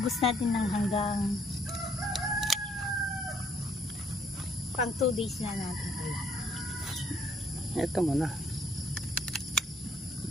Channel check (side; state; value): both; normal; correlation 0.66